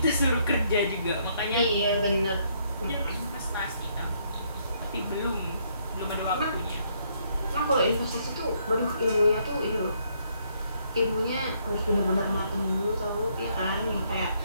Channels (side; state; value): both; inverted; correlation -0.70